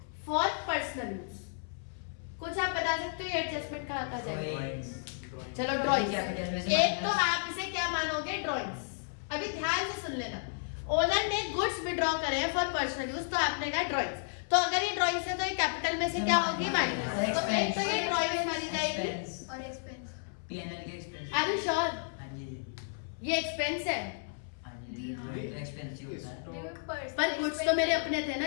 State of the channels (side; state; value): right; silent; 56 dB below the other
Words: फॉर पर्सनल यूज। कुछ आप बता सकते हो ये एडजस्टमेंट कहाँ कहाँ जाएगा? चलो ड्राइंग्स। एक तो आप इसे क्या मानोगे? ड्राइंग्स। अभी ध्यान से सुन लेना। ओनर ने गुड्स विड्रॉ करे हैं फॉर पर्सनल यूज, तो आपने कहा ड्राइंग्स। तो अगर ये ड्राइंग्स है तो ये कैपिटल में से क्या होगी? माइनस। तो एक तो ये ड्राइंग्स मानी जाएगी और एक्सपेंस। पीएनएल के एक्सपेंस। Are you sure? हां जी। ये एक्सपेंस है? हां जी। हां ये एक्सपेंस ही होता है। पर गुड्स तो मेरे अपने थे ना,